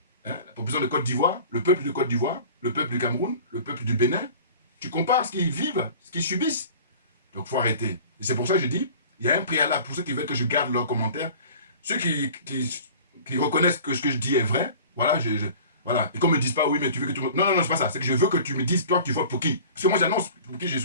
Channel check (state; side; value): inverted; both; correlation -0.42